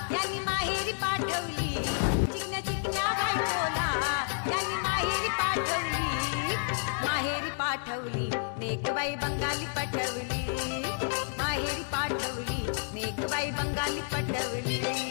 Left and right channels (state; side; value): silent; right; 58 dB below the other